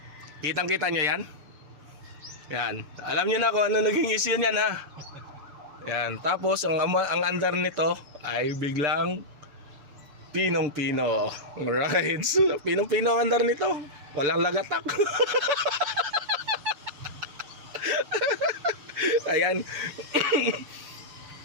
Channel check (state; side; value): late; left; 6.8 ms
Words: kitang kita nyo yan. Yan, alam niyo na kung ano naging issue niyan Yan, tapos ang andar nito ay biglang pinong-pino. Alright, pinong-pino ang andar nito. Walang lagatak. Ayan.